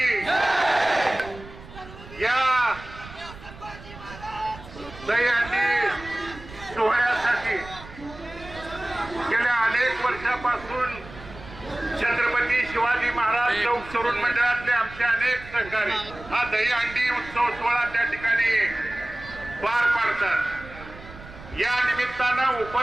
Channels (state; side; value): noise; right; rumble, 17 dB below the sound